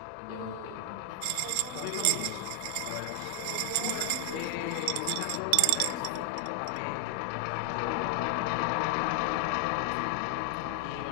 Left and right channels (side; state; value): both; different; correlation 0.00